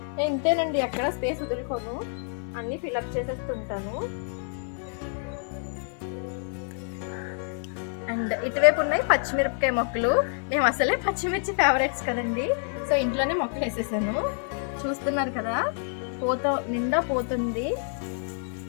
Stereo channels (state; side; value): silent; right; 60 dB below the other